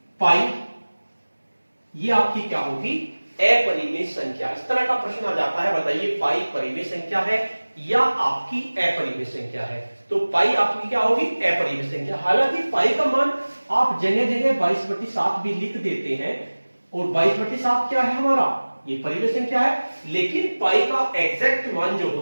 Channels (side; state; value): both; inverted; correlation -1.00